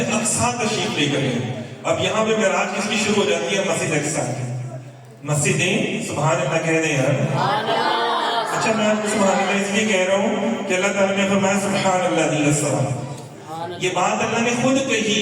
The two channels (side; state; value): both; identical; correlation 1.00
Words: تشریف لے کر گئے. اب یہاں پہ معراج کس کی شروع ہو جاتی ہے؟ مسجد اقصی کی. مسجدیں سبحان اللہ کہہ دیں یار. اچھا میں آپ کو سبحان اللہ اس لیے کہہ رہا ہوں کہ اللہ تعالیٰ نے فرمایا سبحان اللہ دی السلام. یہ بات اللہ نے خود کہی.